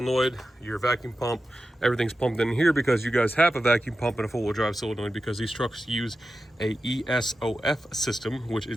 your vacuum pump, everything's pumped in here because you guys have a vacuum pump and a four-wheel drive solenoid because these trucks use a ESOF system, which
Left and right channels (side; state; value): both; normal; correlation 0.92